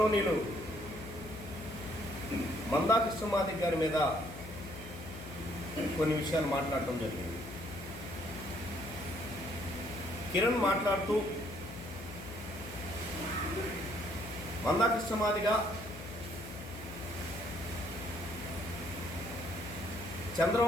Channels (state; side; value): noise; left; hum, 12 dB below the sound